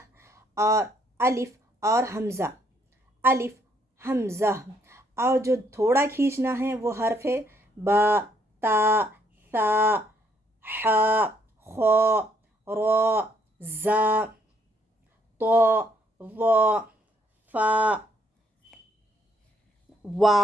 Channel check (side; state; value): both; normal; correlation 0.69